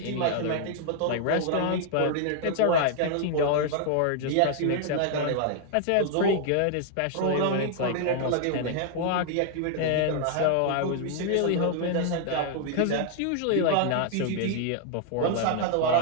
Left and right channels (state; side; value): different; both; correlation 0.00